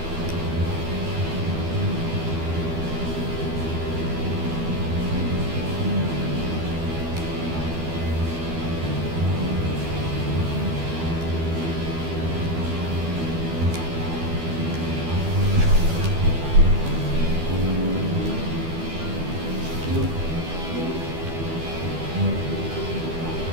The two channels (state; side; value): late; left; 12 ms